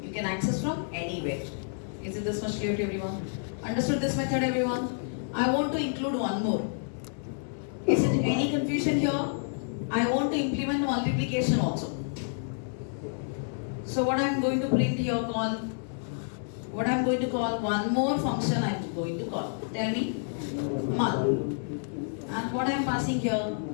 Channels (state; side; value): silent; right; digital silence